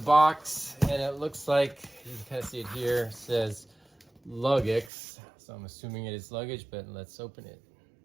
and it looks like, you can kind of see it here, it says Luggage. So I'm assuming it is luggage, but let's open it.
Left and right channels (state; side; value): drops out; left; at 4.9 s